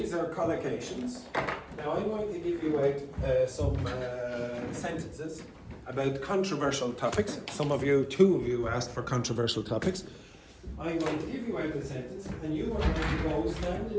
are collocations. Now I'm going to give you out some sentences about controversial topics. Two of you asked for controversial topics. I'm going to give you out a sentence and you are going to go stand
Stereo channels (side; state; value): both; identical; correlation 1.00